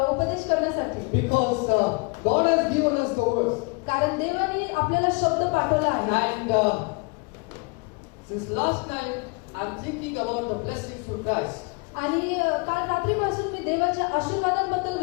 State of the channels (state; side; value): quieter; right; 30.7 dB